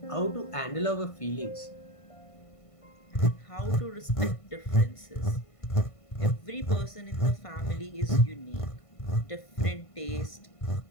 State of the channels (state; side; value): late; right; 1.5 ms